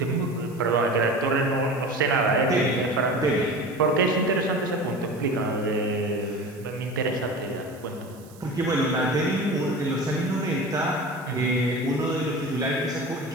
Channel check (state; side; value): noise; right; hiss, 25 dB below the sound